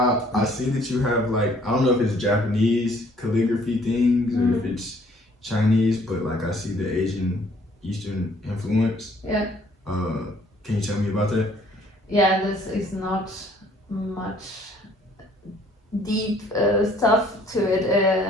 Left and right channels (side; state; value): both; normal; correlation 0.60